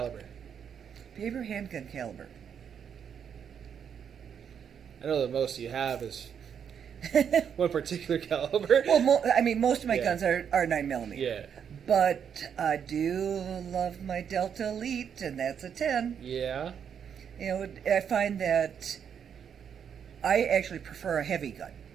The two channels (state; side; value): quieter; left; 7.8 dB